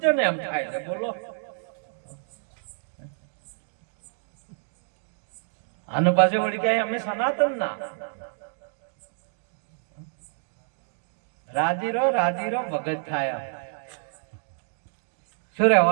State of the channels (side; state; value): left; silent; digital silence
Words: ને એમ થાય છે બોલો. અને પાછું વળી કે અમે સનાતન ના રાજી રહો ભગત થાય. શું